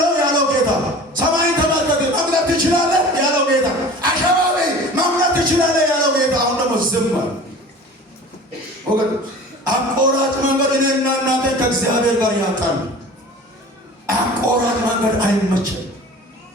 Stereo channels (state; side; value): normal; both; correlation 0.41